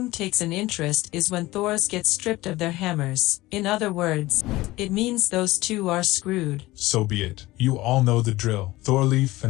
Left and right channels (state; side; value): quieter; right; 18.6 dB